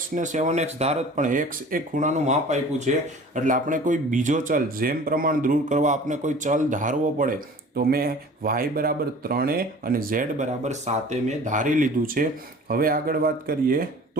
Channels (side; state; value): both; normal; correlation 0.44